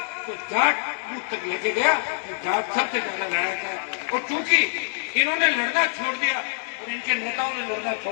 तो जाट बूथ तक लेके गया, तो जाट सबसे ज्यादा लड़ा था। और चूंकि इन्होंने लड़ना छोड़ दिया और इनके नेताओं ने लड़ना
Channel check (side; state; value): right; silent; digital silence